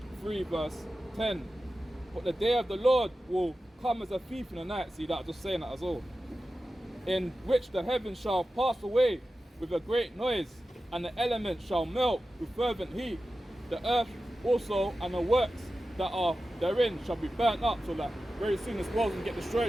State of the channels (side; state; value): both; normal; correlation 0.93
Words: 3 verse 10. But the day of the Lord will come as a thief in the night. See that? Just saying that as well. In which the heavens shall pass away with a great noise, and the elements shall melt with fervent heat. The earth also and the works that are therein shall be burnt up. So that very soon this world's gonna get